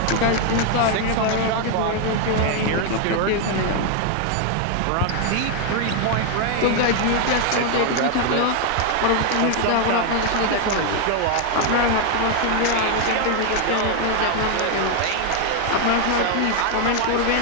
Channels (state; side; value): different; both; correlation 0.00